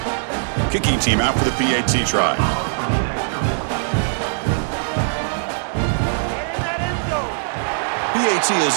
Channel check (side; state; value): left; silent; 65 dB below the other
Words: Kicking team out for the PAT try. PAT